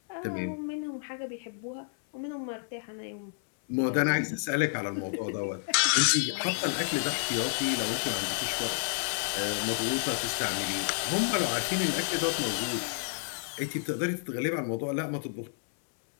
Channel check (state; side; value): silent; right; 58 dB below the other